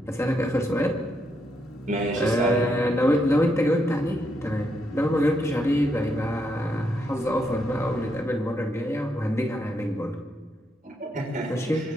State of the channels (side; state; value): both; normal; correlation 0.79